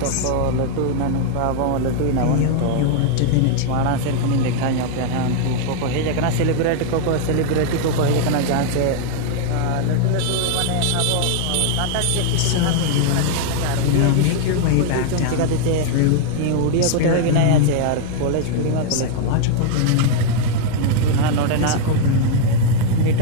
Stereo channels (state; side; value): different; both; correlation 0.00